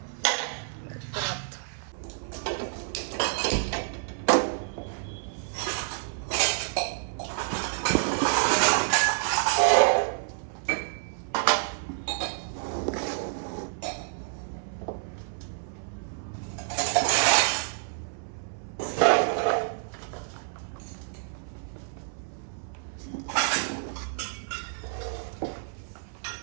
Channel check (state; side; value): silent; left; 59 dB below the other